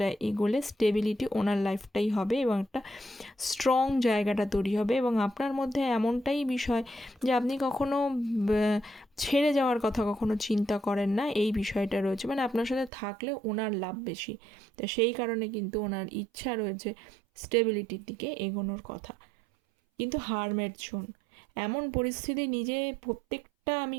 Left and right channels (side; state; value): left; drops out; at 12.9 s